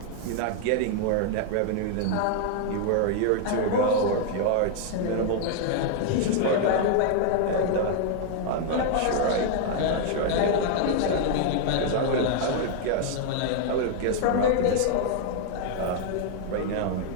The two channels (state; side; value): different; both; correlation 0.00